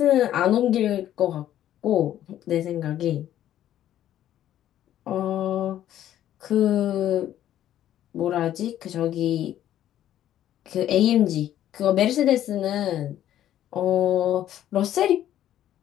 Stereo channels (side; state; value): right; quieter; 11.8 dB